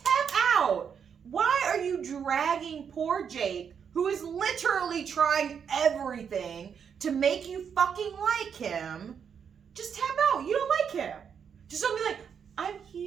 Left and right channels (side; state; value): left; quieter; 7.3 dB